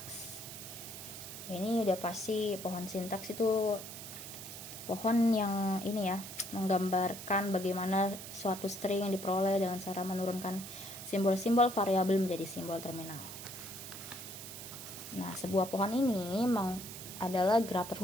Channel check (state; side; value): noise; right; hiss, 11 dB below the sound